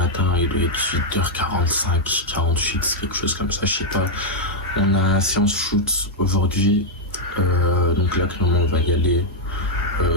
il doit être 8h45, 48, quelque chose comme ça, je sais pas. On a séance shoot aujourd'hui, donc là clairement on va y aller.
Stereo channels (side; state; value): both; normal; correlation -0.02